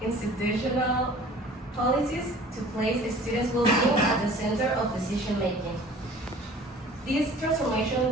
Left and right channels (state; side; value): normal; both; correlation 0.48